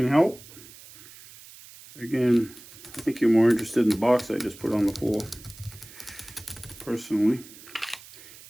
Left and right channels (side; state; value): right; noise; hiss, 19 dB below the sound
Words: help? Again, I think you're more interested in the box I just put on the floor. Personally.